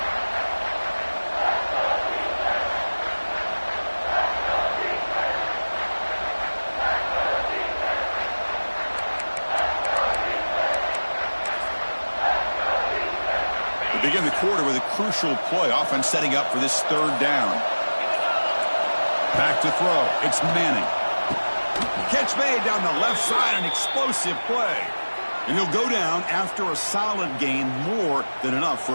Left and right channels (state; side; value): inverted; both; correlation -1.00